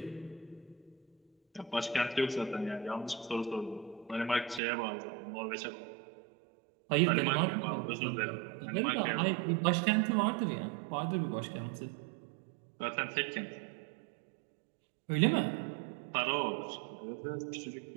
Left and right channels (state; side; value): drops out; left; at 4.6 s